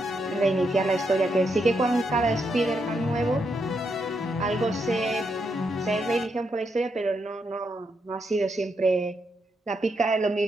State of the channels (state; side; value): normal; both; correlation 0.80